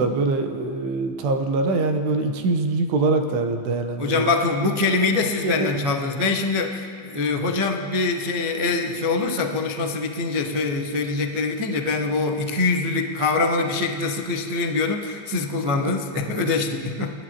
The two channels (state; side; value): late; left; 15 ms